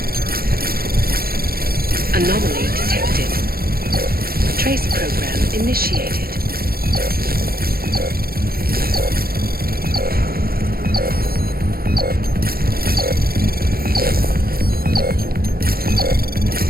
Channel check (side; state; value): left; late; 0.44 ms